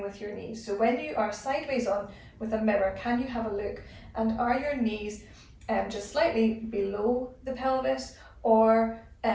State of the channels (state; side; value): identical; both; correlation 1.00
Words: with your knees. So when you are sideways on with a mirror, can you have a look, and are your knees just slightly below the pelvis or